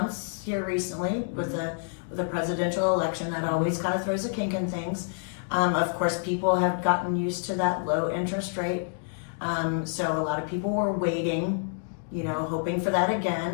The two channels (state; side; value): silent; right; digital silence